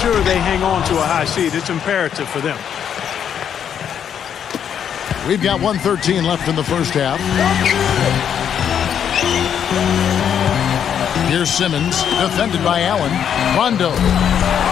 they hang on to a high seed. It's imperative for them. We've got 1:13 left in the first half. Here's Simmons, defended by Allen. Rondo.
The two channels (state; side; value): quieter; right; 8.6 dB